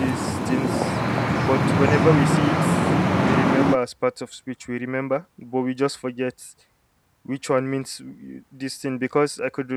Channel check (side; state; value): both; identical; correlation 1.00